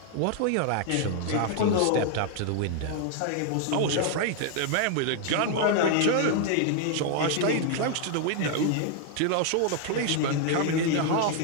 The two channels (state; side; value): different; both; correlation 0.00